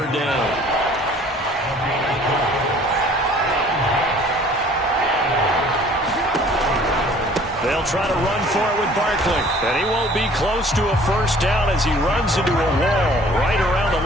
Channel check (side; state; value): both; normal; correlation 0.53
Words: down. They'll try to run for it with Barkley. And he won't be close to a 1st down as he runs into a wall right around the